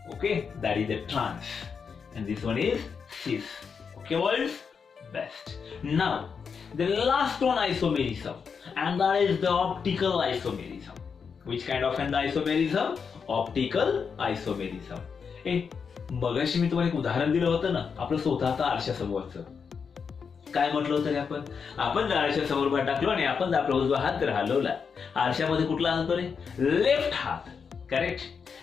Okay, that is the trans, and this one is cis. Okay, boys, best. Now, the last one isomerism, and that is the optical isomerism. Which kind of an isomerism? Optical isomerism. मगाशी मी तुम्हाला एक उदाहरण दिलं होतं ना, आपलं स्वतःचं आरशासमोरचं. काय म्हटलं होतं आपण जर आरशा समोर टाकलो आणि आपण जर आपला उजवा हात जर हलवला, आरशामध्ये कुठला हात रे? लेफ्ट हात, करेक्ट.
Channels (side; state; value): right; quieter; 6.0 dB